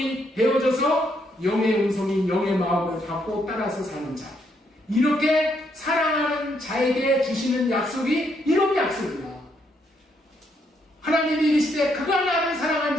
되어져서 영의 음성인 영의 마음을 받고 따라서 사는 자, 이렇게 사랑하는 자에게 주시는 약속이 이런 약속이야. 하나님이 이르시되 그가 나를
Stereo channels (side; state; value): both; normal; correlation 0.74